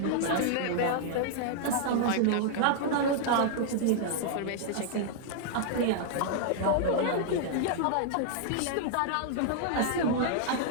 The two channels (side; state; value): both; different; correlation -0.01